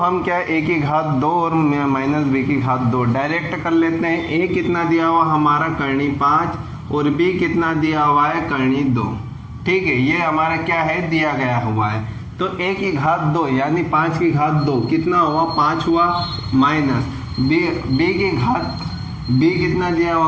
क्या a की घात 2 और माइनस b की घात 2 डायरेक्ट कर लेते हैं। a कितना दिया हुआ हमारा करनी 5 और b कितना दिया हुआ है करनी 2, ठीक है। ये हमारा क्या है दिया गया हुआ है। तो a की घात 2 यानी 5 की घात 2 कितना हुआ 5 हुआ, माइनस b की घात b कितना दिया हुआ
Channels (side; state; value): both; identical; correlation 1.00